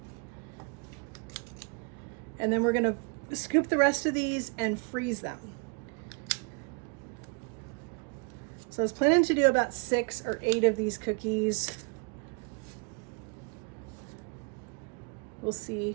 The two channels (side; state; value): left; quieter; 35.0 dB